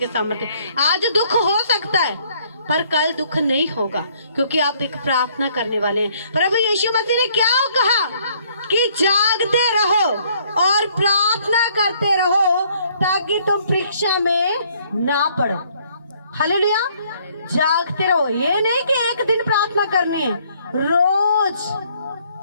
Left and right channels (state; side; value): inverted; both; correlation -0.64